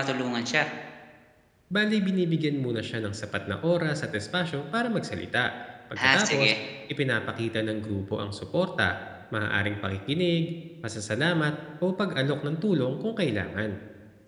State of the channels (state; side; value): identical; both; correlation 1.00